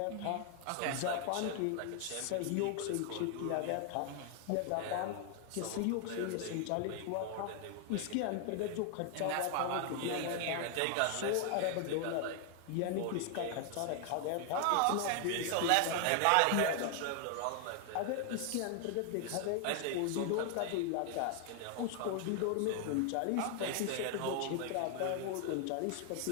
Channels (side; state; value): both; different; correlation 0.00